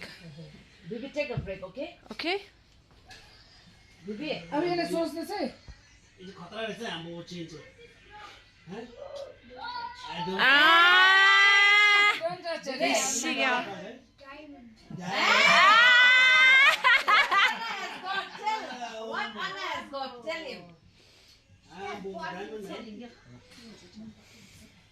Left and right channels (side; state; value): both; identical; correlation 1.00